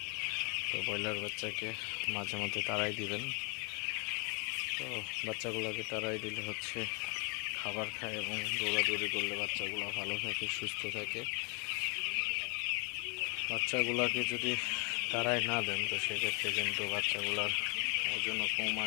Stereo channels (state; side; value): quieter; right; 34.2 dB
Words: তো ব্রয়লার বাচ্চাকে মাঝে মধ্যে তাড়াই দিবেন। তো বাচ্চাগুলোকে তাড়াই দিলে হচ্ছে খাবার খায় এবং দৌড়াদৌড়ি করলে বাচ্চাগুলো ভালো থাকে, সুস্থ থাকে। বাচ্চাগুলোকে যদি তাড়াই না দেন তো সেক্ষেত্রে কিন্তু বাচ্চাগুলোর ওজনও কম